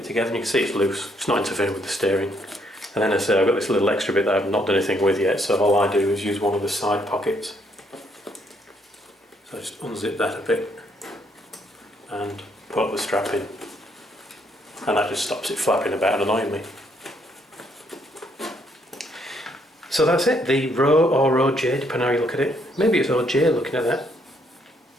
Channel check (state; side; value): normal; both; correlation 0.71